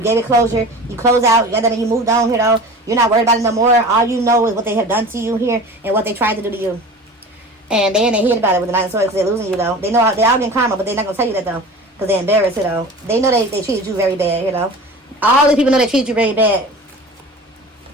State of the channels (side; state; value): both; normal; correlation 0.37